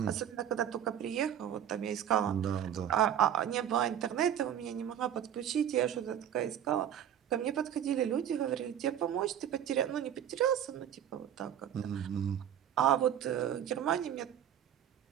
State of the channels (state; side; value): quieter; left; 10.0 dB